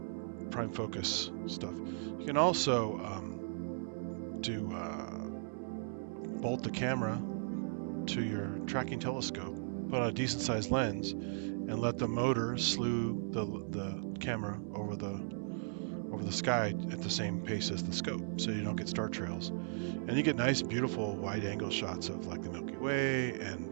prime focus stuff. You can also bolt the camera to your tracking telescope, put on a decent sized lens, and let the motor slew the camera over the sky at the same pace as the scope, so you don't get star trails. And you get nice, beautiful wide-angle shots of like the Milky Way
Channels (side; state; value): left; silent; 53 dB below the other